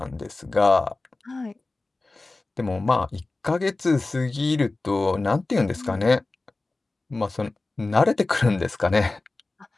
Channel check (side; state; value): right; quieter; 3.2 dB